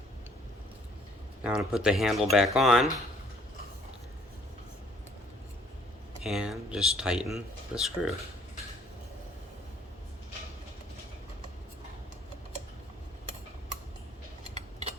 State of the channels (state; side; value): normal; both; correlation 0.60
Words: Now I'm going to put the handle back on and just tighten the screw.